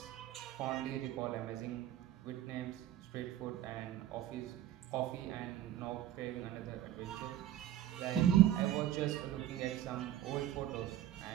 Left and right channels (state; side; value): quieter; left; 12.4 dB